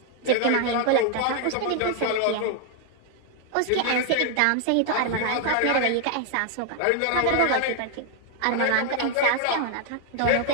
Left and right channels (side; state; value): both; different; correlation 0.00